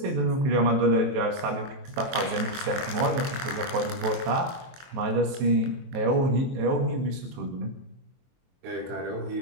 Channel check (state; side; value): late; left; 22 ms